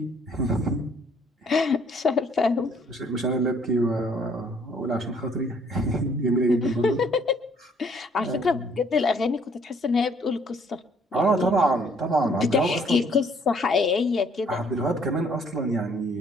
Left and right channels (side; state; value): both; normal; correlation 0.63